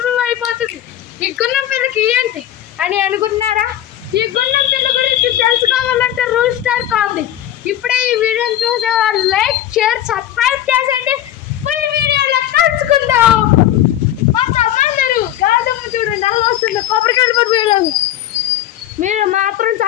అయిపోతుంది. ఈ గున్నం పిల్లకి ఏంటి అని అనుకుంటున్నారా? ఈ గున్నం పిల్ల గురించి తెలుసుకోవాలంటే రూల్ స్టార్ కావాలి. ఇప్పుడే ఈ వీడియోని చూసే వాళ్ళు లైక్, షేర్, సబ్స్క్రైబ్ చేసేయండి. ఫుల్ వీడియోలో కలుసుకుందాం. కొంతమంది గాదమ్మ చూడండి అలా వస్తుంది, కొబ్బరికాయలు పడిపోయేలాగా. మీరు మాత్రం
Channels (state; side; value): quieter; right; 12.3 dB